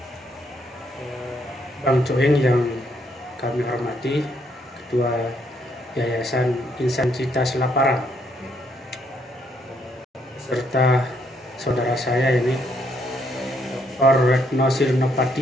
Bang Cuing yang kami hormati, Ketua Yayasan Insan Cita Selaparang, serta saudara saya ini Dr. Retno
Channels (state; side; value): normal; both; correlation 0.72